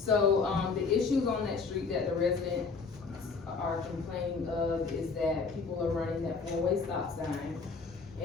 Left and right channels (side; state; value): right; quieter; 4.7 dB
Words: the issues on that street that the residents are complaining of is that people are running that 4-way stop sign.